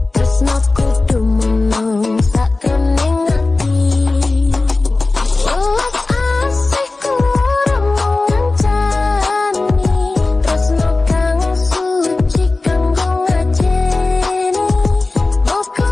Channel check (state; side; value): quieter; right; 3.4 dB